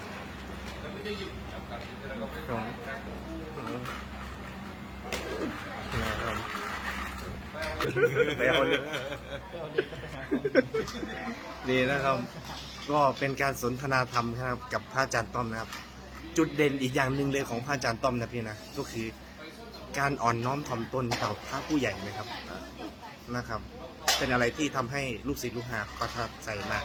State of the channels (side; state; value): both; identical; correlation 1.00